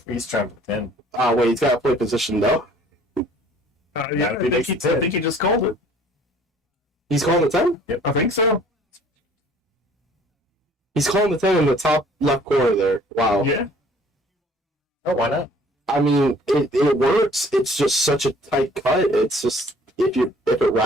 10. Oh, wait, he's got to play position, though. Yeah, That'd be I think he just called it. He's calling the 10? Yep. I think so. He's calling the 10 in the top left corner there. Wow. Yeah. Oh, why not? I mean, it works. It's just such a tight cut. It's just, if it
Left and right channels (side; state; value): both; normal; correlation 0.55